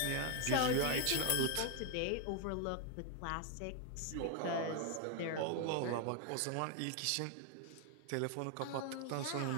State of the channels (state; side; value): different; both; correlation 0.01